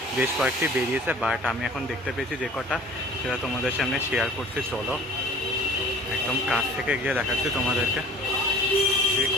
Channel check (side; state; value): both; normal; correlation 0.46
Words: বেশ কয়েকটি বেরিয়েছে, বাট আমি এখন দেখতে পেয়েছি যে কটা সেটা তোমাদের সামনে শেয়ার করতে। চলো একদম কাছ থেকে গিয়ে দেখাচ্ছি তোমাদেরকে, যে